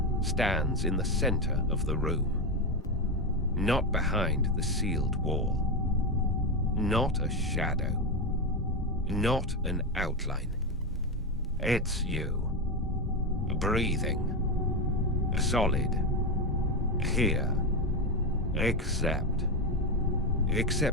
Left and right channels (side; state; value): both; normal; correlation 0.12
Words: stands in the center of the room, not behind the sealed wall. Not a shadow, not an outline. It's you, breathing, solid, here, except